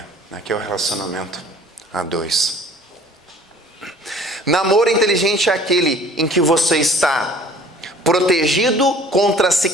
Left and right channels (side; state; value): both; normal; correlation 0.50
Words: né, que é o relacionamento a dois. Namoro inteligente é aquele em que você está protegido contra se